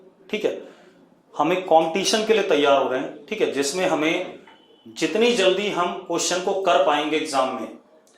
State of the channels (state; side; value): identical; both; correlation 1.00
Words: ठीक है। हम एक कंपटीशन के लिए तैयार हो रहे हैं, ठीक है, जिसमें हमें जितनी जल्दी हम क्वेश्चन को कर पाएंगे एग्जाम में,